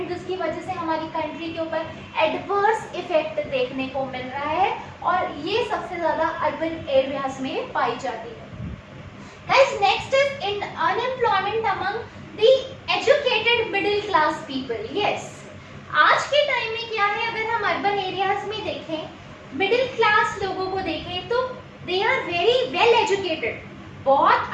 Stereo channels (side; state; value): both; identical; correlation 1.00